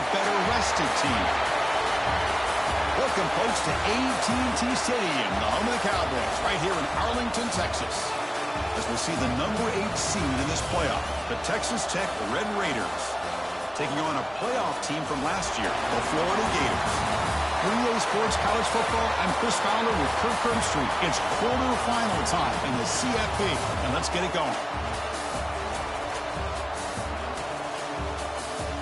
better-rested team? Welcome, folks, to AT&T Stadium, the home of the Cowboys, right here in Arlington, Texas, as we see the number 8 seed in this playoff, the Texas Tech Red Raiders, taking on a playoff team from last year, the Florida Gators. Relay Sports College Football, I'm Chris Fowler with Kirk Herbstreit. It's quarterfinal time in the CFP, and let's get it going.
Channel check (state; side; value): identical; both; correlation 1.00